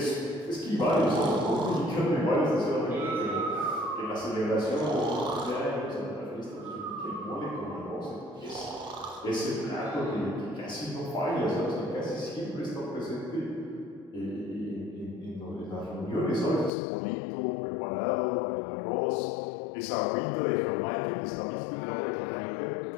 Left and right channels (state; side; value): drops out; right; at 16.7 s